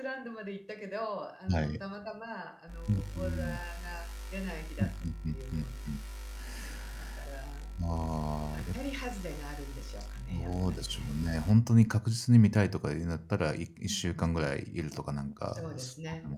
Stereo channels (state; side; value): identical; both; correlation 1.00